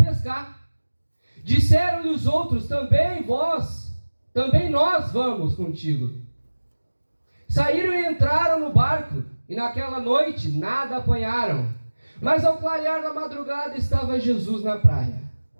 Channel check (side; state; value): both; inverted; correlation -1.00